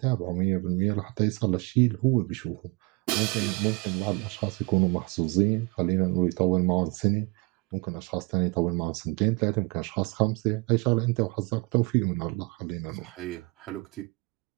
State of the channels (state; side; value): quieter; left; 26.3 dB